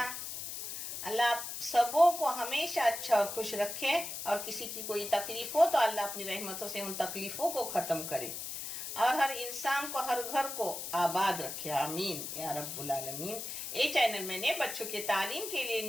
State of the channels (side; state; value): left; noise; hiss, 6 dB below the sound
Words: अल्लाह आप सबों को हमेशा अच्छा और खुश रखे, और किसी की कोई तकलीफ हो तो अल्लाह अपनी रहमतों से उन तकलीफों को खत्म करे, और हर इंसान को, हर घर को आबाद रखे। आमीन या रब्बुल आलमीन। ये चैनल मैंने बच्चों के तालीम के लिए